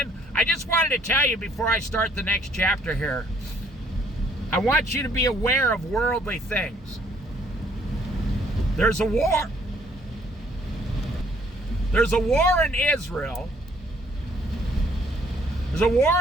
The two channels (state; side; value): normal; both; correlation 0.64